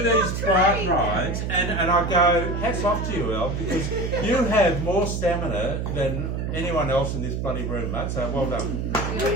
these bike rides, and I go, hats off to you, El, because you have more stamina than anyone else in this bloody room, mate. So well done.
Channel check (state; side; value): noise; right; hum, 2 dB below the sound